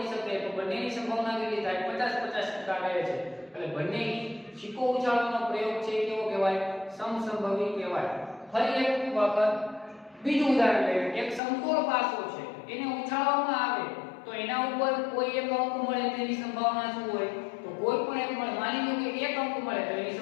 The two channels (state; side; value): drops out; right; at 11.4 s